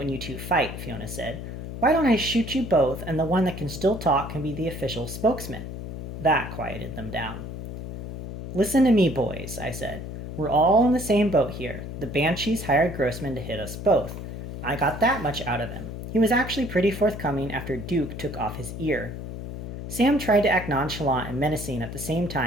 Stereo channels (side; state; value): left; noise; hum, 8 dB below the sound